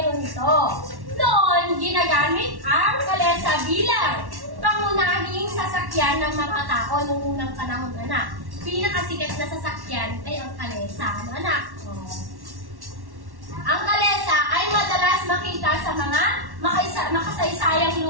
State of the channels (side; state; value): left; late; 1.1 ms